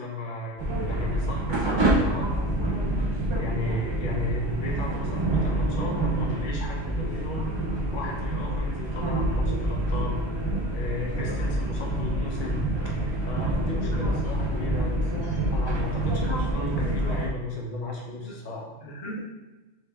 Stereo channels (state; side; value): normal; both; correlation 0.39